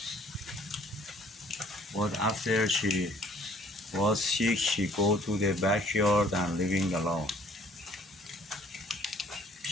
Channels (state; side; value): normal; both; correlation 0.58